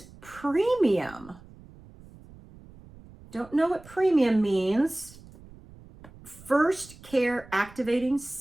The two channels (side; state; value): right; noise; rumble, 21 dB below the sound